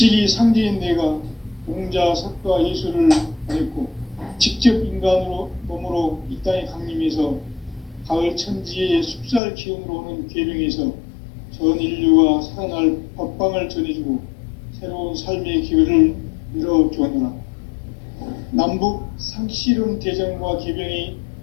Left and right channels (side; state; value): right; drops out; at 9.4 s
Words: 상제인 내가 공자, 석가, 예수를 보냈고 직접 인간으로 몸으로 이 땅에 강림해서 가을 천지의 숲살 기운으로 오는 계명에서 전 인류가 살아날 법방을 전해주고 새로운 삶의 기회를 열어주었노라. 남북 상실은 대전과 계병이